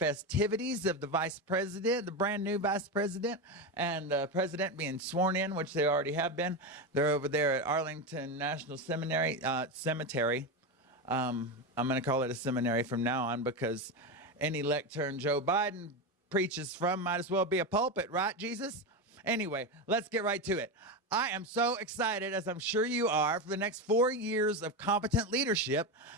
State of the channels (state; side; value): normal; both; correlation 0.15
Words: of the vice president, the brand new vice president, and the president being sworn in, which they already have been. They're over there at Arlington National Cemetery. I'm going to call it a seminary from now on because any lectern Joe Biden preaches from might as well be a pulpit, right, Jesus? Anyway, let's get right to it. I am so excited, as I'm sure you are, for the next 4 years of competent leadership